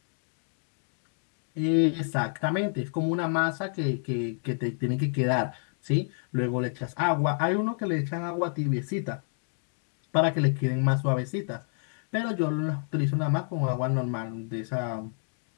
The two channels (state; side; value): silent; right; digital silence